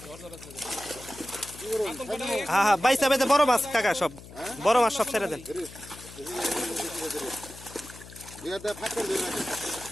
হ্যাঁ হ্যাঁ বাইসা বেঁধে বড় মাছ কাকা সব বড় মাছ সব ছেড়ে দেন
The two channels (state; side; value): noise; left; hum, 17 dB below the sound